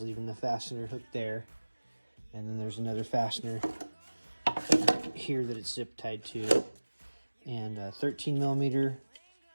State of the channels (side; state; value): both; inverted; correlation -1.00